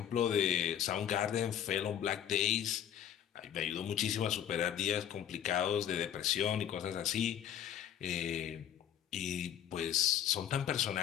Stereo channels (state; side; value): quieter; right; 10.0 dB